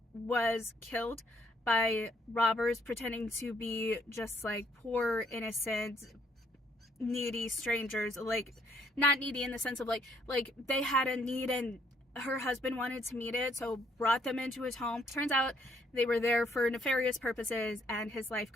was killed by robbers pretending to be just like poor, innocent, needy strangers. Like, not needy in the sense of like they had a need and her husband wanted to meet it, so brought them into his home. Turns out they were there for nefarious purposes and his life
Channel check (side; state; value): both; normal; correlation 0.68